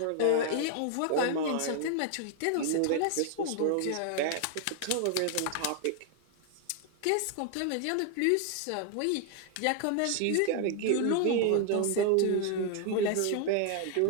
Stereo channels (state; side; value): different; both; correlation 0.00